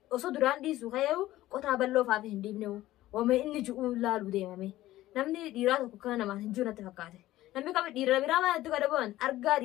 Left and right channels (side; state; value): right; quieter; 15.6 dB